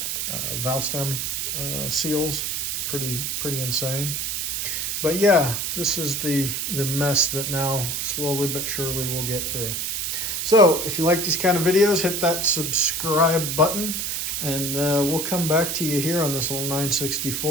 valve stem seals. Pretty insane. But yeah, this is the mess that now slowly but surely we'll get through. So if you like these kind of videos, hit that subscribe button, and we'll come back to you here on this little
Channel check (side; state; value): right; noise; hiss, 1 dB below the sound